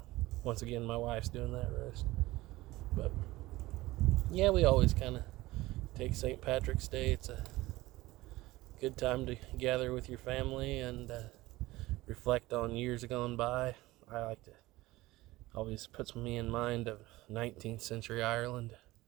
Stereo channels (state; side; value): quieter; left; 18.7 dB